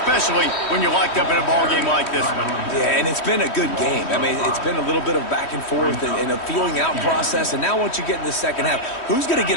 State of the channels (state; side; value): late; right; 3.1 ms